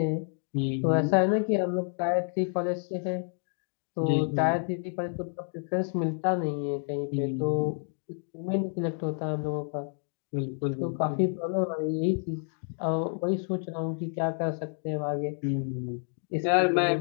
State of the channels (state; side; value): silent; right; 58 dB below the other